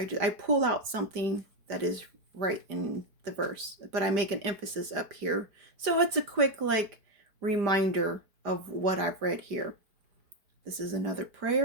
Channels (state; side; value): late; left; 5.0 ms